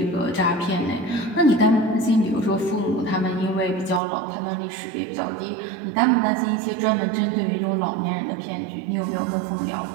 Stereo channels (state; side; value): drops out; left; at 4.0 s